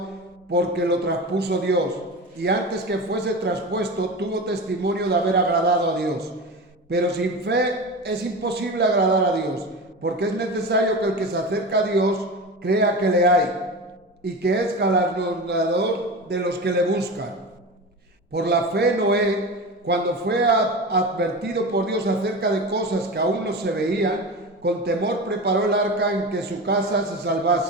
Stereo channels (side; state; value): both; normal; correlation 0.27